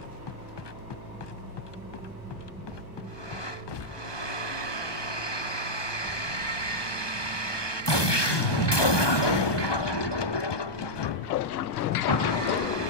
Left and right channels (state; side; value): late; right; 1.2 ms